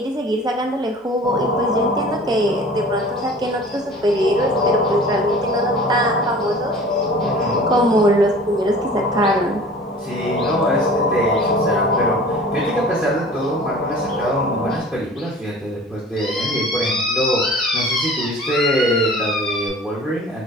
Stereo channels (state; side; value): normal; both; correlation 0.44